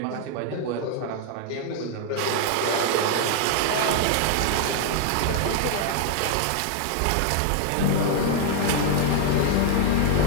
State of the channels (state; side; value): different; both; correlation 0.00